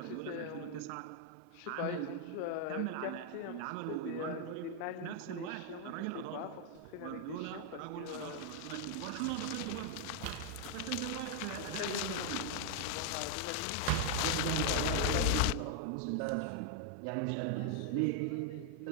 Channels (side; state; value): both; different; correlation 0.00